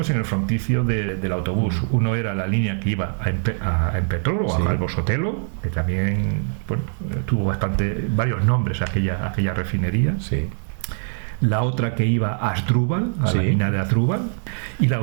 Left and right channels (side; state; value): left; silent; 58 dB below the other